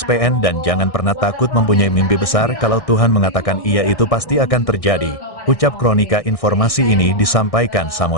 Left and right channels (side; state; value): right; late; 1.6 ms